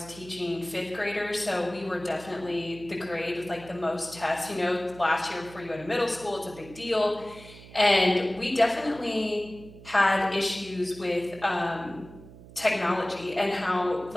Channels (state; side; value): noise; right; hum, 18 dB below the sound